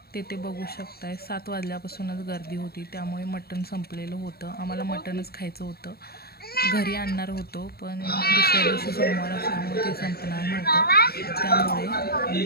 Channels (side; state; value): right; late; 0.45 ms